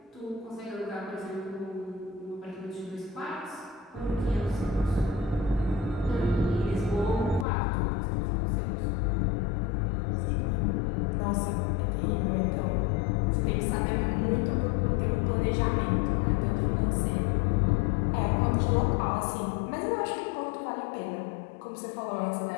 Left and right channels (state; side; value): drops out; right; at 7.5 s